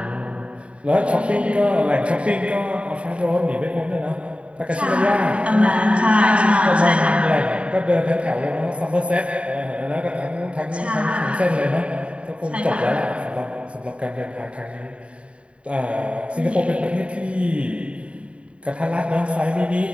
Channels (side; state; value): left; late; 0.061 ms